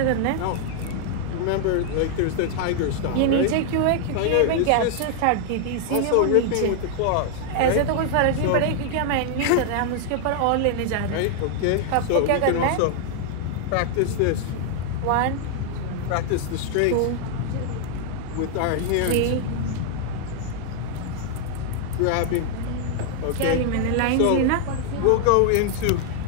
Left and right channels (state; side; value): different; both; correlation 0.00